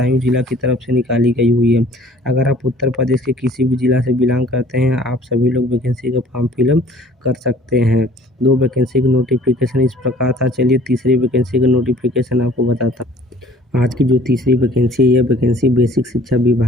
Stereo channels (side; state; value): both; normal; correlation 0.52